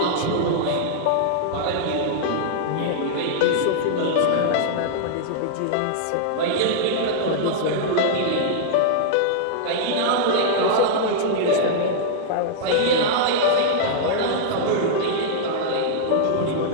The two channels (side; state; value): both; different; correlation -0.02